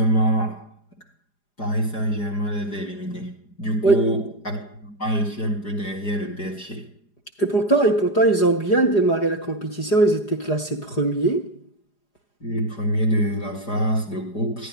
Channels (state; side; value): late; right; 4.9 ms